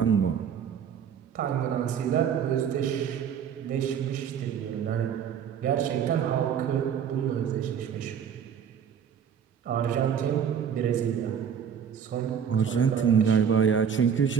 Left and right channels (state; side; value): quieter; left; 7.8 dB